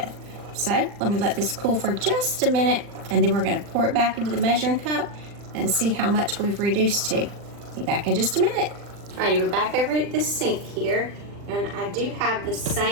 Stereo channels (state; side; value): late; left; 40 ms